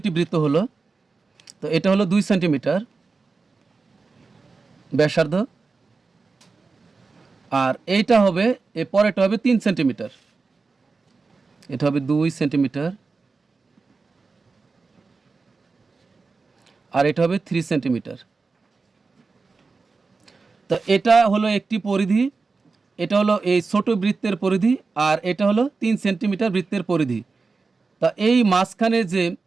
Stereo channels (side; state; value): left; quieter; 4.2 dB